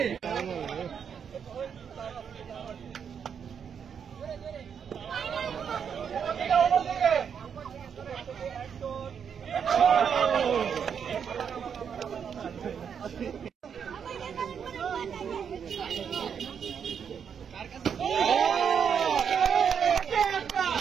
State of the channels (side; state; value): left; quieter; 7.3 dB